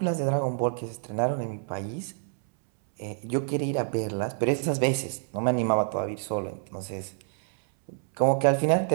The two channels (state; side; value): silent; left; 60 dB below the other